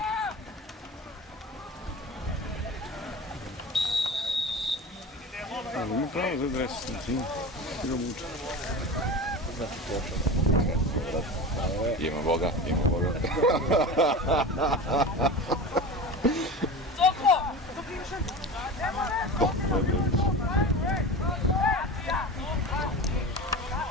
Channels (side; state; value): both; normal; correlation 0.30